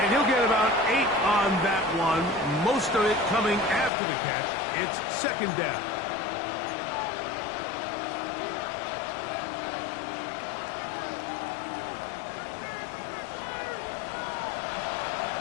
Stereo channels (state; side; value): drops out; right; at 3.9 s